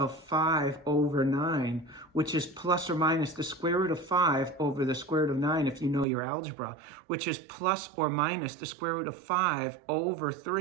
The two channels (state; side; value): drops out; left; at 6.1 s